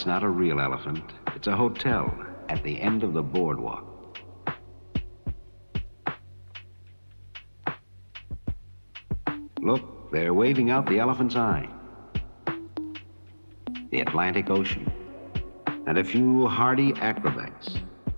not a real elephant. It's a hotel at the end of the boardwalk. Look, they're waving out the elephant's eye. The Atlantic Ocean, and a few hardy acrobats.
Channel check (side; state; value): both; inverted; correlation -1.00